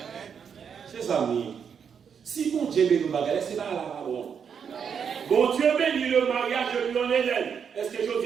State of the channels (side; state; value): left; quieter; 7.1 dB